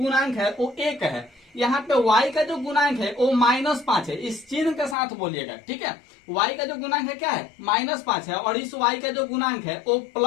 है वो 1 है। यहाँ पे y का जो गुणांक है वो -5 है, इस चिन्ह के साथ बोलिएगा, ठीक है। y का जो गुणांक है क्या है, -5 है, और इस y का जो गुणांक है वो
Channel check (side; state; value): right; drops out; at 5.0 s